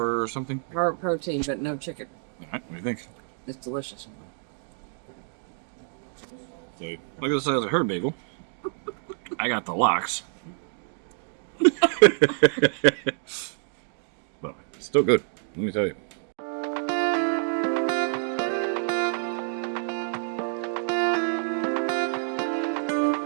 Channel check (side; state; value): left; silent; 57 dB below the other